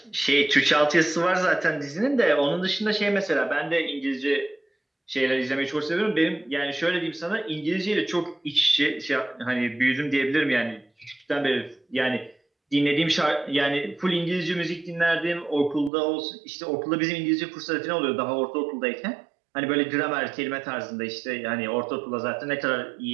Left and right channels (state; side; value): drops out; left; at 15.9 s